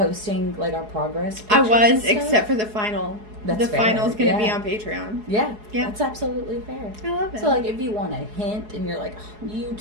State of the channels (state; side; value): late; left; 4.7 ms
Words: like, our progress I pictures was, and stuff? except for the final. That's the fair. final's going to be Yeah. on Patreon. Yeah. Yeah. That's absolutely fair. I love it. So, like, if you want a hint and you're like,